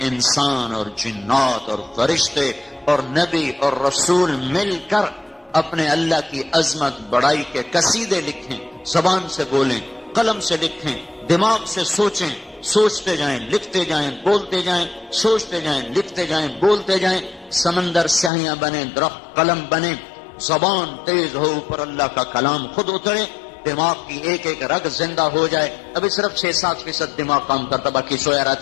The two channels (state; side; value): drops out; right; at 18.3 s